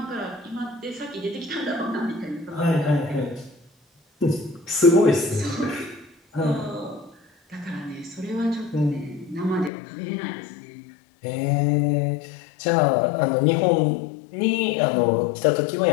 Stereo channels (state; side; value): drops out; right; at 9.7 s